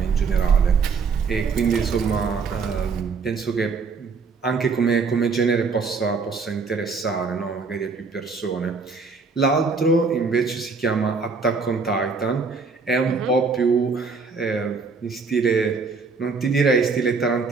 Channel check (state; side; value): quieter; left; 4.7 dB